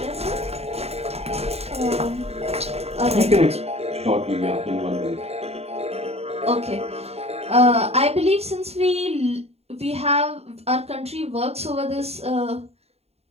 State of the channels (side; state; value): left; late; 0.30 ms